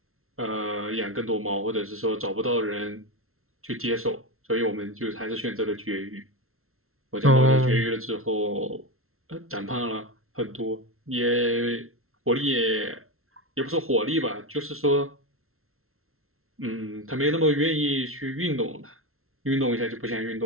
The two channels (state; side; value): late; left; 0.62 ms